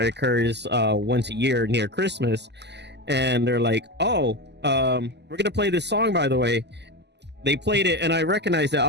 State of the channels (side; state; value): left; late; 0.50 ms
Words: occurs once a year near Christmas, and they're like, oh, we're gonna play this song, by the way. They played it, and I recognized it.